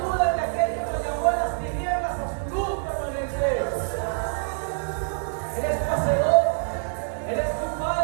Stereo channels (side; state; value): left; silent; digital silence